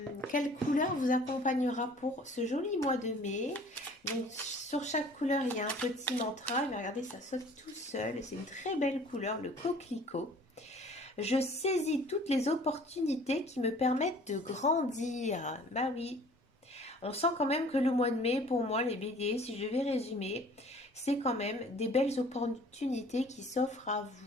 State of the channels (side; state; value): both; normal; correlation 0.51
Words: Quelle couleur vous accompagnera pour ce joli mois de mai? Donc sur chaque couleur il y a un petit mantra. Mais regardez, ça saute tout seul. C'est une très belle couleur, le coquelicot. Je saisis toutes les opportunités qui me permettent de grandir. Bah oui, on sent quand même que le mois de mai, pour moi, les béliers, si je vais résumer, c'est quand même des belles opportunités qui s'offrent à